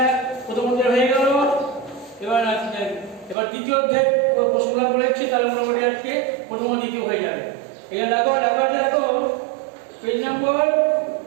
প্রথম অধ্যায় হয়ে গেল। এবার দ্বিতীয় অধ্যায় প্রশ্নটা বলেছি, তাহলে মোটামুটি আজকে প্রথম ও দ্বিতীয় হয়ে যাবে। এটা দেখো দেখো পেজ নম্বর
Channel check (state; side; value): drops out; left; at 3.4 s